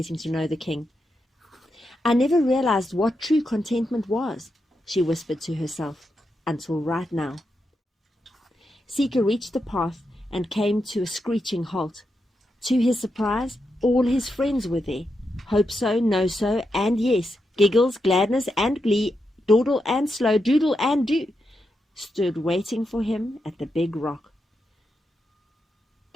to know the king. "I never realized what true contentment was," she whispered to herself, "until right now." Seeker reached the path and came to a screeching halt. To his surprise, all his friends were there. Hope So, No So, and Yes, Giggles, Gladness, and Glee, Dawdle and Slow, Doodle and Do, stood waiting for him at the big rock.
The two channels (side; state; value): both; normal; correlation 0.85